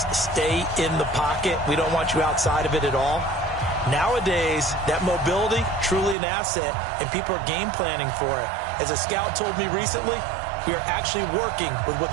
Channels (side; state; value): left; drops out; at 6.2 s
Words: stay in the pocket. We don't want you outside of it at all. Nowadays, that mobility, truly an asset, and people are game planning for it. As a scout told me recently, we are actually working with what